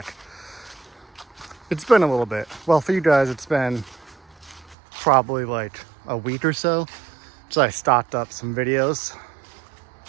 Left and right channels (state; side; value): drops out; left; at 4.8 s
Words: It's been a little bit. Well, for you guys, it's been probably like a week or so. So I stocked up some videos